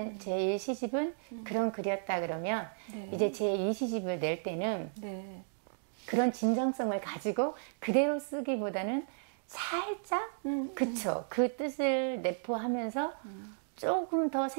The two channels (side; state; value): left; silent; digital silence